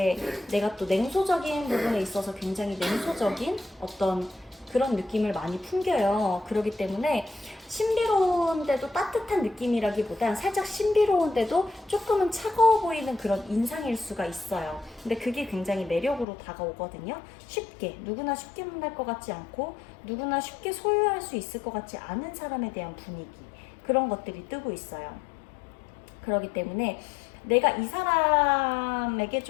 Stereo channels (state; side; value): drops out; right; at 16.2 s